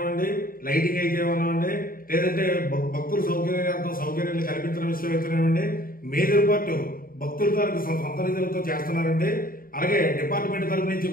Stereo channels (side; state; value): right; late; 0.42 ms